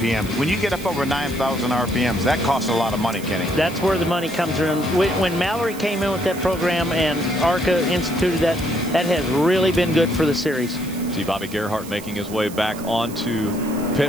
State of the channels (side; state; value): right; noise; hiss, 16 dB below the sound